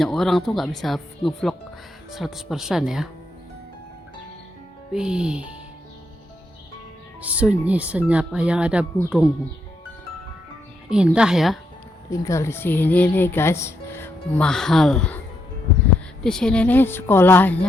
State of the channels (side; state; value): both; normal; correlation 0.79